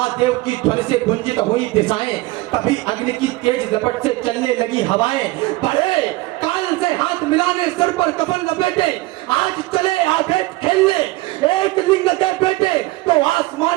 की ध्वनि से गुंजित हुई दिशाएं, तभी अग्नि की तेज लपट से चलने लगी हवाएं, बढ़े काल से हाथ मिलाने, सर पर कफन लपेटे, आज चले आगे खेलने, एक लिंग के बेटे, तो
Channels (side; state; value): left; quieter; 20.0 dB